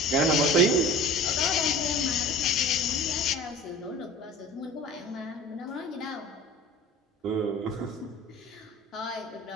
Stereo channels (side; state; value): both; normal; correlation 0.40